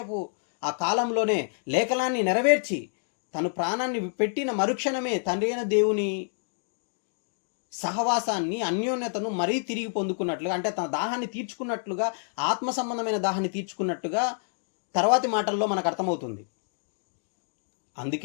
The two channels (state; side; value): silent; right; digital silence